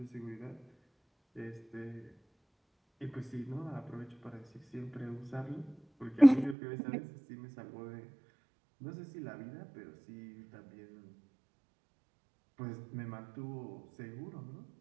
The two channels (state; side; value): drops out; left; at 6.6 s